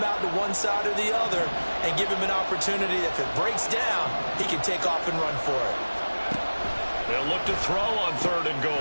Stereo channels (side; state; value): both; inverted; correlation -1.00